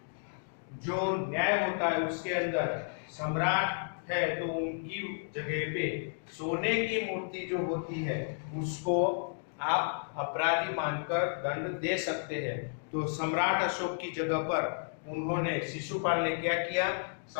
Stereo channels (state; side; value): silent; right; digital silence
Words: जो न्याय होता है उसके अंदर सम्राट है तो उनकी जगह पे सोने की मूर्ति जो होती है उसको आप अपराधी मानकर दंड दे सकते हैं। तो सम्राट अशोक की जगह पर उन्होंने शिशुपाल ने क्या किया,